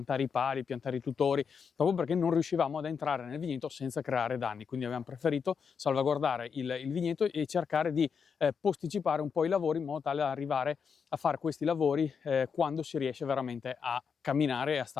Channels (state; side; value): quieter; right; 6.3 dB